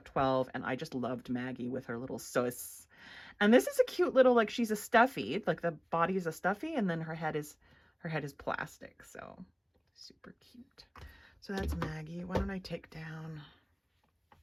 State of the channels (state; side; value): identical; both; correlation 1.00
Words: 12, and I just loved Maggie with her little sus. And this is a cute little, like, she's a stuffy, like the body is a stuffy, and then her head is plastic. So super cute. So that's Maggie. Why don't I take down?